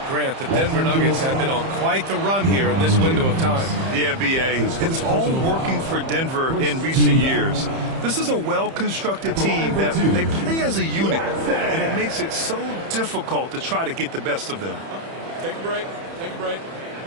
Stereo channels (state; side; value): late; left; 30 ms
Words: Grant, the Denver Nuggets have been on quite the run here in this window of time. Yeah, B.A. It's all working for Denver in recent years. This is a well-constructed team that they play as a unit, and it makes it so difficult to try to get the best of them. Take a break. Take a break.